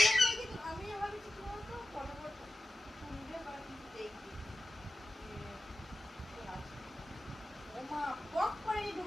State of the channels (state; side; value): normal; both; correlation 0.93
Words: আমি ভাবছি তোমার তো ফটোফট শুনবে বা কিছু দেখবি ও মা পক করে